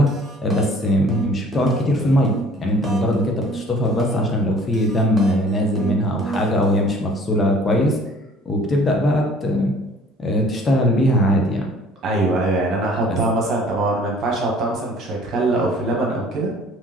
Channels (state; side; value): normal; both; correlation 0.53